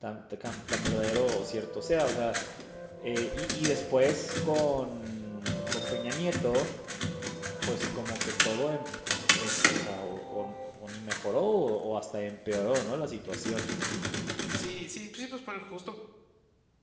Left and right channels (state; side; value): identical; both; correlation 1.00